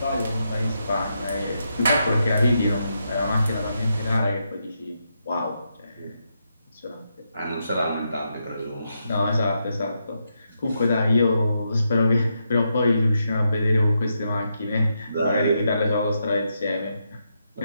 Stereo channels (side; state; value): both; inverted; correlation -0.82